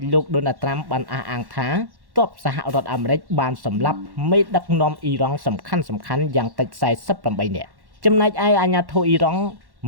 លោកដូណាល់ត្រាំបានអះអាងថាទ័ពសហរដ្ឋអាមេរិកបានសម្លាប់មេដឹកនាំអ៊ីរ៉ង់សំខាន់យ៉ាងតិច48នាក់ចំណែកឯអាជ្ញាធរអ៊ីរ៉ង់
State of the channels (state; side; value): late; left; 1.1 ms